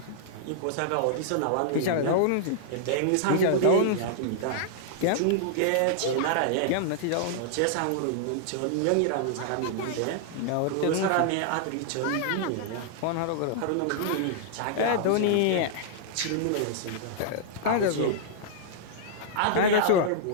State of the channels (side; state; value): both; different; correlation -0.01